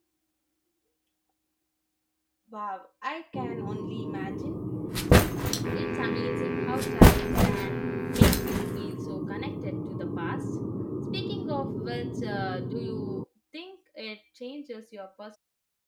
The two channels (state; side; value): identical; both; correlation 1.00